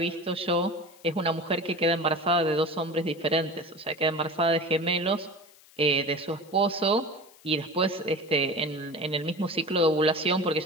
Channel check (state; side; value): noise; left; hiss, 26 dB below the sound